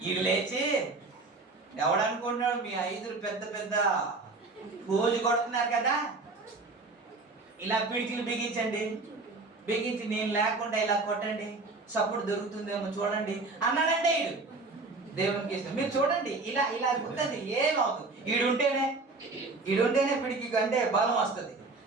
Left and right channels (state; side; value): quieter; left; 3.6 dB